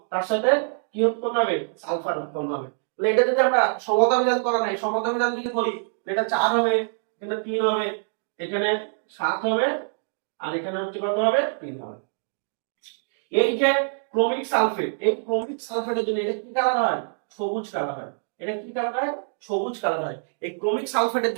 তার সাথে কি উৎপন্ন হবে? সালফার উৎপন্ন হবে। তাহলে এটা যদি আমরা সমতা বিধান করা নাই, সমতা বিধান যদি করি, এটা 4 হবে, এখানে 3 হবে, এখানে 7 হবে, আর এখানে হচ্ছে কত হবে? 3 হবে। এই যে ক্রোমিক সালফেট, এই ক্রোমিক সালফেটের জন্য এটা কি কালার হয়? সবুজ কালার হয়। এটা কি কালার হয়? সবুজ কালার হয়। এই ক্রোমিক সালফেটের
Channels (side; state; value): left; silent; digital silence